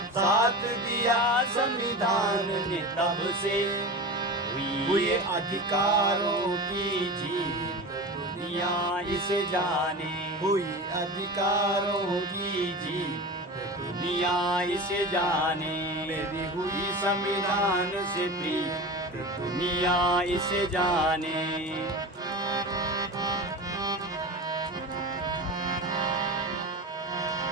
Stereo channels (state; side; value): normal; both; correlation 0.29